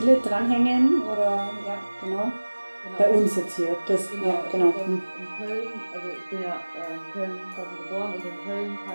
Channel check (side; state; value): both; inverted; correlation -1.00